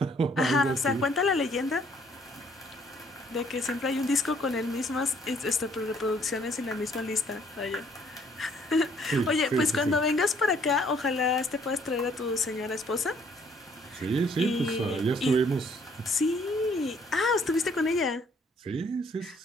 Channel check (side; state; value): both; normal; correlation 0.63